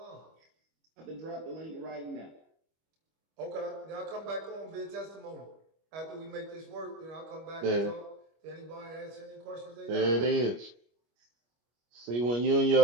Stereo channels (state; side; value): late; left; 25 ms